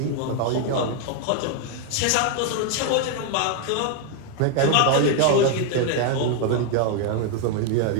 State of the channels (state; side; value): different; both; correlation 0.01